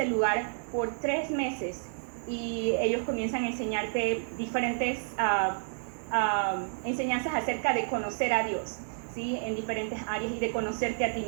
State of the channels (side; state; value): left; silent; 58 dB below the other